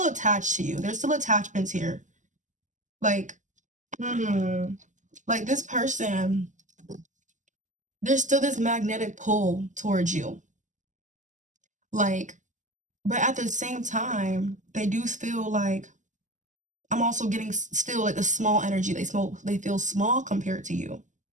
attached to you. There's still attachments here. Like, hmm like this person, there's still this magnetic pull towards you. Like, but at the same time, they do feel like I'm also getting still like a small energy. They feel small compared to you.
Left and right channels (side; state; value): left; late; 0.36 ms